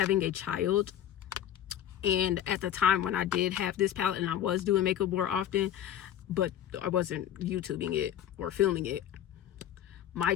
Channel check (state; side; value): quieter; right; 10.7 dB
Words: a child. And at the time when I did have this palette, and I was doing makeup more often, but I wasn't YouTubing it or filming it, my